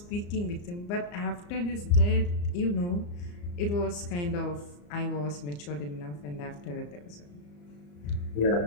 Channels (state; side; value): late; right; 34 ms